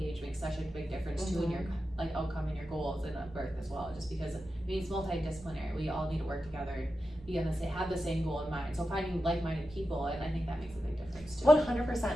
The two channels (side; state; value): both; normal; correlation 0.90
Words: makes such a big difference too in your like outcome and your goals in a birth as well. Just because it's multidisciplinary, we all need to work together and be on the same, have the same goal in mind. So finding like-minded people, and I think that makes a big difference too. 100%,